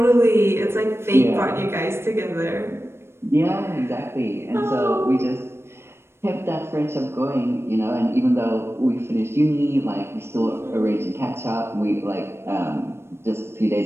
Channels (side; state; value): left; late; 0.12 ms